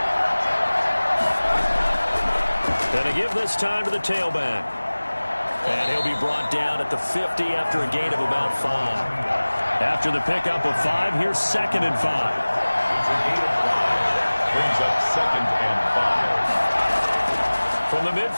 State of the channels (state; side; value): inverted; both; correlation -1.00